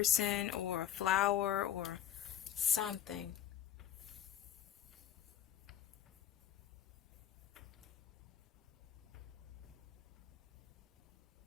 or a flower or something.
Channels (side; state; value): right; quieter; 10.5 dB